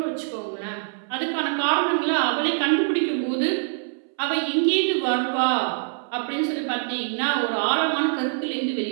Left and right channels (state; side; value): silent; left; 62 dB below the other